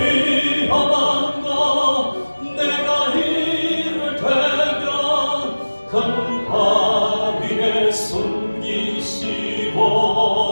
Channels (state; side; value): inverted; both; correlation -1.00